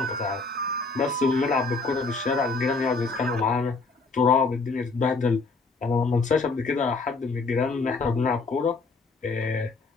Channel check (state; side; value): quieter; right; 3.9 dB